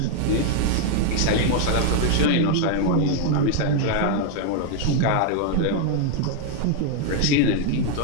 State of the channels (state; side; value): different; both; correlation 0.00